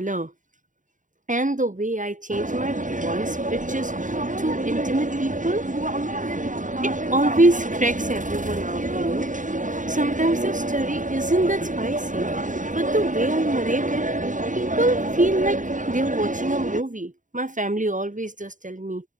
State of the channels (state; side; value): late; left; 0.37 ms